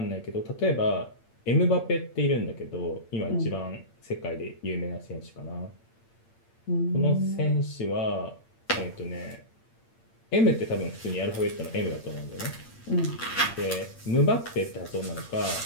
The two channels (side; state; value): right; late; 8.7 ms